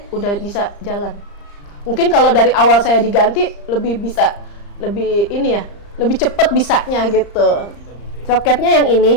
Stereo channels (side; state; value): right; late; 35 ms